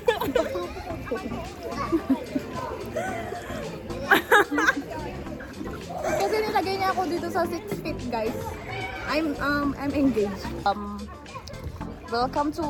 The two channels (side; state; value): both; identical; correlation 1.00